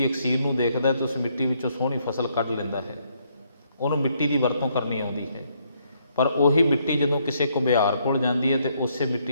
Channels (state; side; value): inverted; both; correlation -0.72